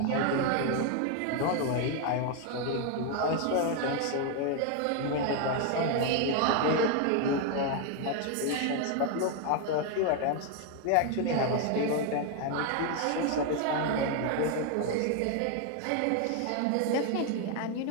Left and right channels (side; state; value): both; different; correlation 0.01